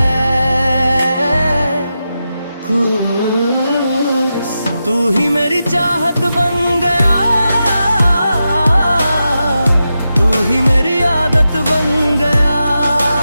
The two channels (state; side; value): inverted; both; correlation -0.89